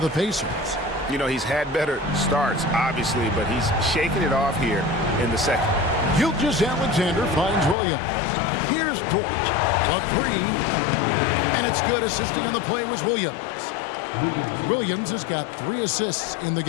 Pacers. You know, he's had better starts, obviously, but he's shaking it off here in the second. Gilgeous-Alexander finds Williams. Here's Dort. A 3. And it's good. Assisting on the play was Williams. Williams has got 3 assists in the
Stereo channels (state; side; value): drops out; right; at 7.8 s